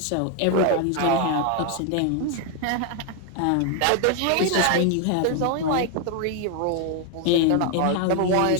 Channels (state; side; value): different; both; correlation 0.01